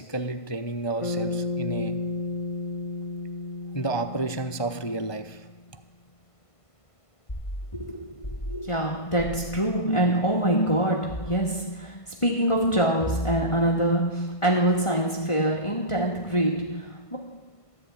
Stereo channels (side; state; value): right; late; 1.5 ms